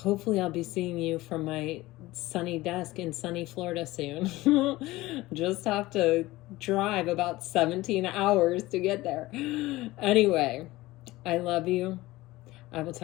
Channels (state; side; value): quieter; right; 18.7 dB